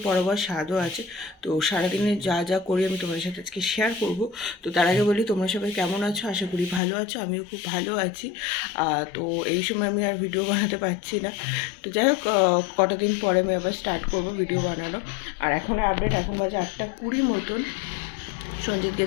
পড়াবো আর স্বাদও আছে। তো সারাদিনে যা যা করি আমি তোমাদের সাথে আজকে শেয়ার করব। তো তার আগে বলি, তোমরা সবাই কেমন আছো? আশা করি ভালো আছো, আমিও খুব ভালো আছি। তো এই সময় আমি আর ভিডিও বানাতে পারছি না। তো যাই হোক, কটা দিন পরে আমি আবার স্টার্ট করব ভিডিও বানানো। আর এখন আপডেট, এখন বাজে 8:20 মতন। সঞ্জিত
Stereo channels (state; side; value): drops out; right; at 6.8 s